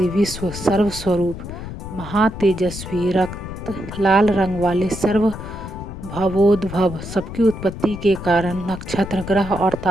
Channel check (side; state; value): left; noise; rumble, 10 dB below the sound